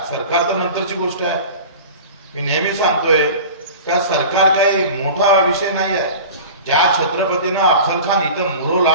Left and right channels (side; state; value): both; inverted; correlation -0.37